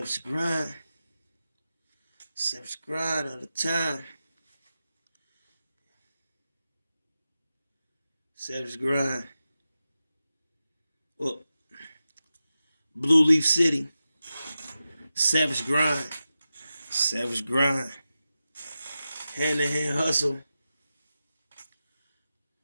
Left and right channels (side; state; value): both; inverted; correlation -0.92